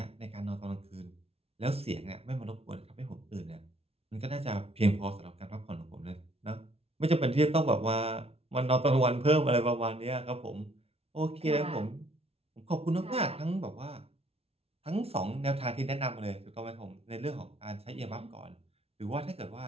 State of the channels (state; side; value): late; left; 0.29 ms